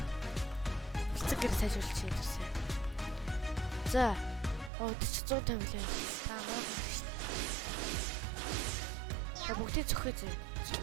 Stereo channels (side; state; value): left; drops out; at 4.7 s